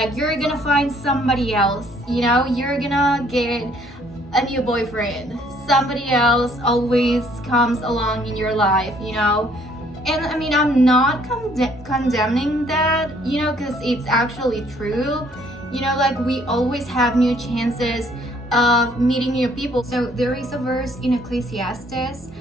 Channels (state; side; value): normal; both; correlation 0.63